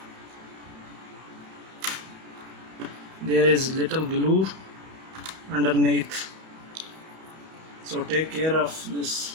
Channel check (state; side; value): late; left; 31 ms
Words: There is little glue underneath, so take care of